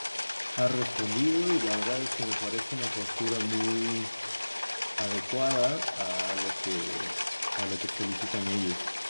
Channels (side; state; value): both; inverted; correlation -1.00